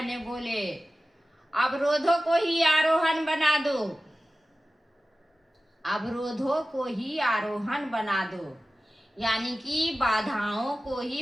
ने बोले अवरोधों को ही आरोहण बना दो, अवरोधों को ही आरोहण बना दो, यानी कि बाधाओं को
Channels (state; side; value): normal; both; correlation 0.95